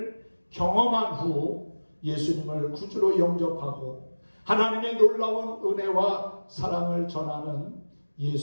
경험한 후 예수님을 구주로 영접하고 하나님의 놀라운 은혜와 사랑을 전하는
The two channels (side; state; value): both; inverted; correlation -1.00